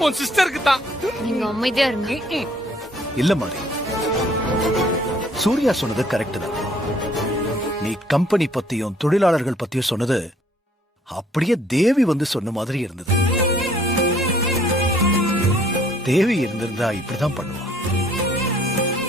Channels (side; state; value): both; normal; correlation 0.61